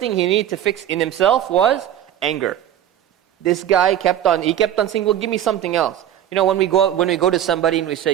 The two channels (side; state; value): left; quieter; 11.0 dB